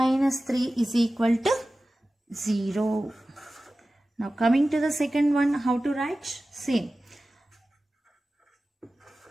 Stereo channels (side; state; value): both; normal; correlation 0.96